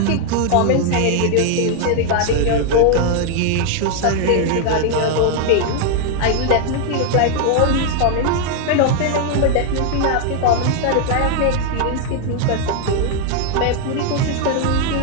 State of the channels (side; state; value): both; different; correlation 0.00